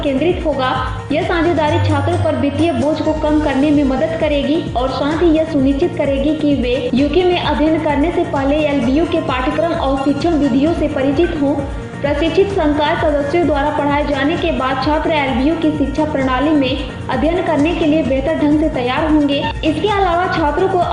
केंद्रित होगा। यह साझेदारी छात्रों पर वित्तीय बोझ को कम करने में मदद करेगी और साथ ही यह सुनिश्चित करेगी कि वे यूके में अध्ययन करने से पहले LBU के पाठ्यक्रम और शिक्षण विधियों से परिचित हों। प्रशिक्षित संकाय सदस्यों द्वारा पढ़ाए जाने के बाद छात्र LBU की शिक्षा प्रणाली में अध्ययन करने के लिए बेहतर ढंग से तैयार होंगे। इसके अलावा छात्रों को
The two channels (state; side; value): identical; both; correlation 1.00